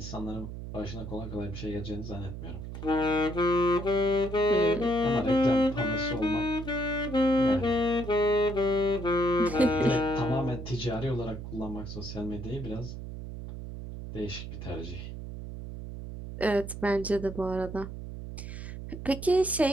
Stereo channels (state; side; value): noise; right; hum, 9 dB below the sound